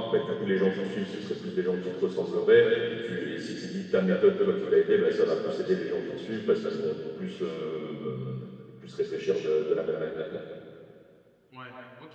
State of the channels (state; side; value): identical; both; correlation 1.00